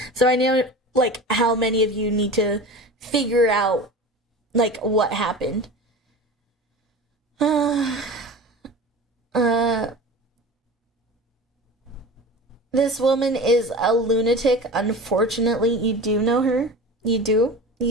So I know like how many of you need to figure out like what happened. This woman is a lunatic. Unfortunately, you do know her. You do.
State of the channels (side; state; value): both; normal; correlation 0.34